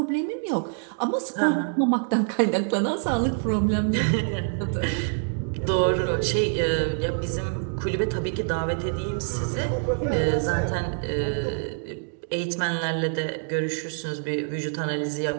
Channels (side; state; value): left; silent; 61 dB below the other